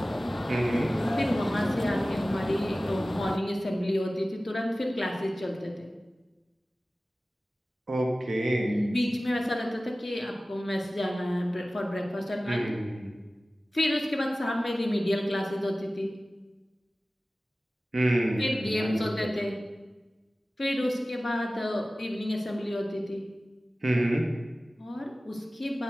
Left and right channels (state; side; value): normal; both; correlation 0.97